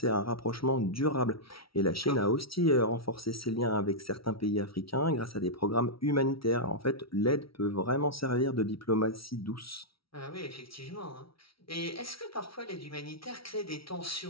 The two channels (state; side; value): late; right; 0.75 ms